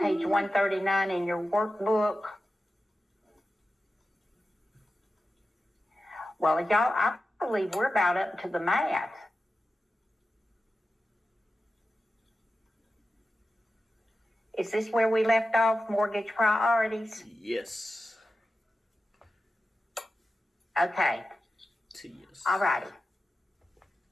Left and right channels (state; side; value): normal; both; correlation 0.93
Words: Page 139 in your workbook. Well, y'all, I believe we're about up to the math. Is this where we left off, mortgage priorities? Yes. Okay. Yes. All righty.